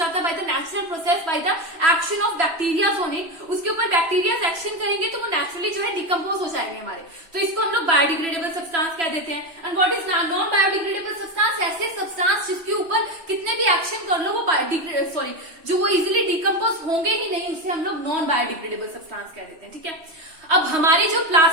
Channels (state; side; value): late; left; 3.0 ms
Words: है by the natural process, by the action of bacteria on it। उसके ऊपर बैक्टीरिया एक्शन करेंगे तो वो नेचुरली जो है डिकम्पोज हो जाएंगे हमारे, तो इसको हम लोग बायोडिग्रेडेबल सब्सटेंस कह देते हैं। And what is non biodegradable substance, ऐसे सब्सटेंस जिसके ऊपर कितने भी एक्शन कर लो वो जो वो इजिली डिकम्पोज होंगे ही नहीं, उसे हम लोग नॉन बायोडिग्रेडेबल सब्सटेंस कह देते हैं, ठीक है। अब हमारी जो